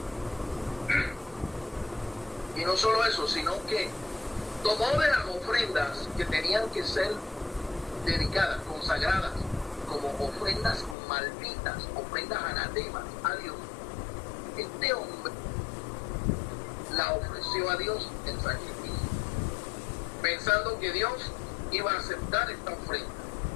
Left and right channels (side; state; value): right; drops out; at 11.0 s